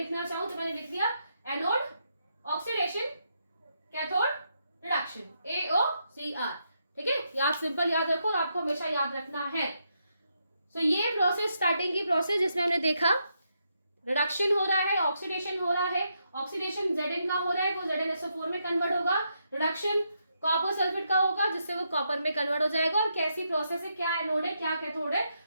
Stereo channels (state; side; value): inverted; both; correlation -0.80